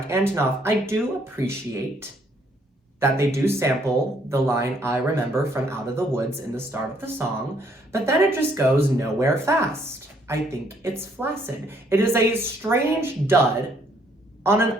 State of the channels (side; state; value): both; normal; correlation 0.67